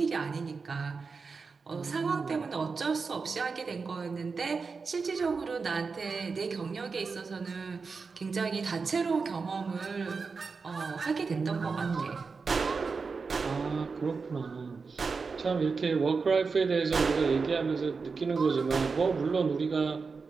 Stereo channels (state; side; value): quieter; left; 4.8 dB